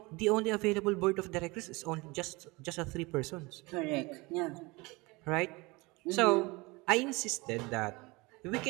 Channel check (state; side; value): quieter; left; 24.4 dB